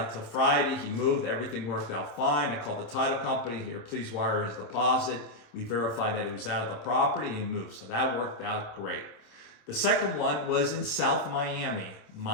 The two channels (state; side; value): late; right; 26 ms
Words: till Friday. He moved. Everything worked out fine. I called the title company. Here, please wire his deposit. We verified that he was out of the property and he moved. So that worked out great. The second one was in South Miami.